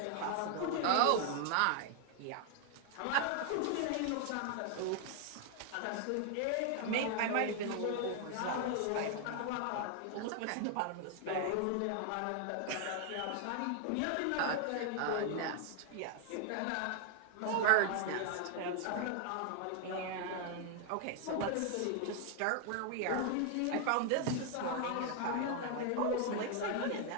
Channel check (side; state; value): both; different; correlation 0.00